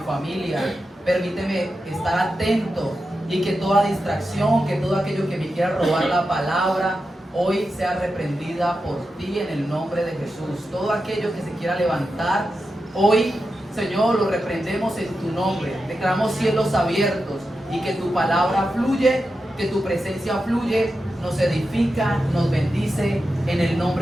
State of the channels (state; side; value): normal; both; correlation 0.90